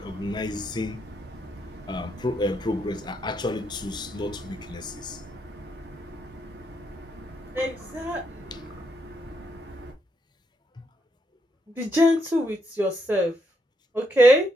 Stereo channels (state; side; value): normal; both; correlation 0.78